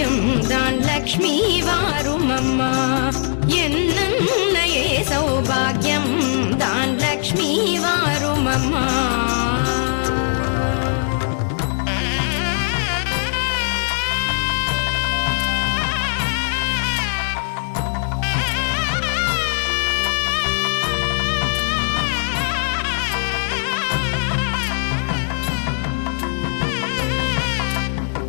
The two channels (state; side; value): silent; right; digital silence